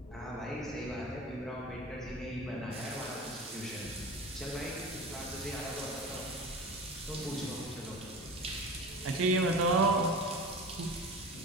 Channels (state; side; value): normal; both; correlation 0.34